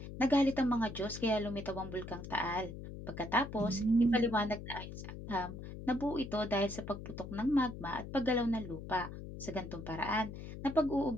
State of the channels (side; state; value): left; noise; hum, 10 dB below the sound